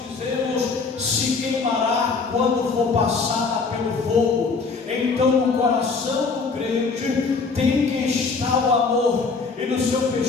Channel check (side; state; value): right; quieter; 4.6 dB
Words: se queimará quando for passada pelo fogo. Então no coração do crente tem que estar o amor, e no seu